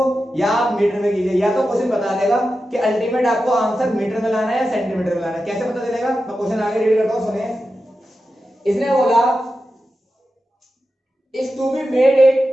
या आप मीटर में कीजिए, या तो क्वेश्चन बता देगा कि अल्टीमेट आपको आंसर मीटर में लाना है या सेंटीमीटर में लाना है। कैसे पता चलेगा, मैं क्वेश्चन आगे रीड करता हूं, सुनिए। इसने बोला is to be made it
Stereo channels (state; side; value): normal; both; correlation 0.91